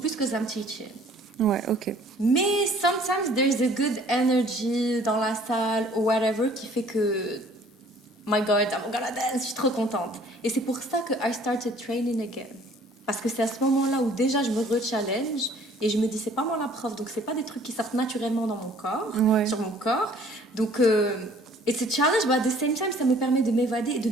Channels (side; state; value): both; normal; correlation 0.55